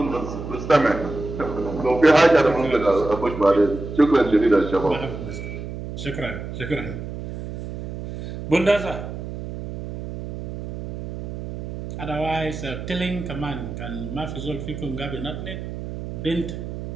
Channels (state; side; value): noise; right; hum, 8 dB below the sound